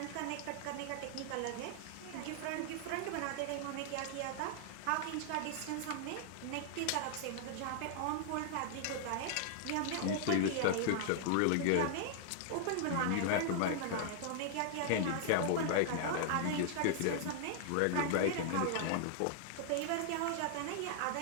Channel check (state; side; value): different; both; correlation 0.00